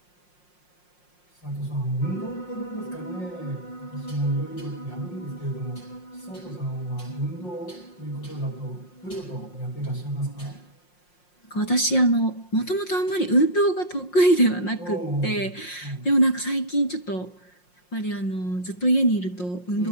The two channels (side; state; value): right; late; 5.6 ms